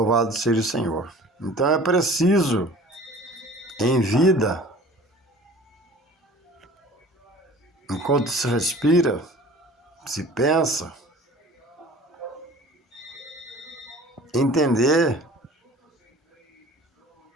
seja o Senhor. Então é preciso, em vida, enquanto se respira, se pensa, entender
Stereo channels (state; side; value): normal; both; correlation 0.45